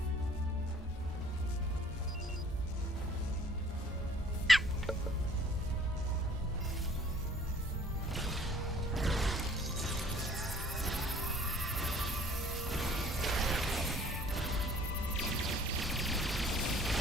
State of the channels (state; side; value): normal; both; correlation 0.55